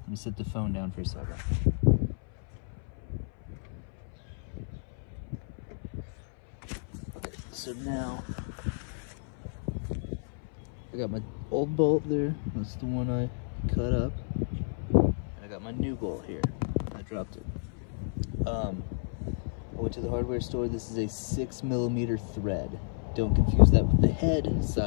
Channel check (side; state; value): right; silent; 57 dB below the other